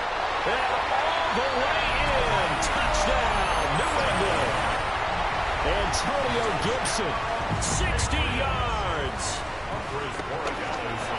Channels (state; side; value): identical; both; correlation 1.00